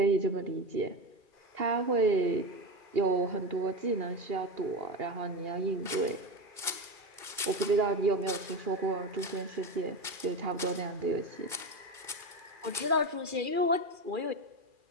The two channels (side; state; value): left; late; 2.2 ms